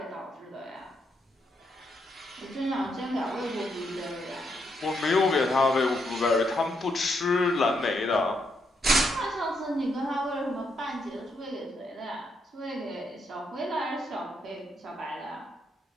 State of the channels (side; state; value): both; normal; correlation 0.78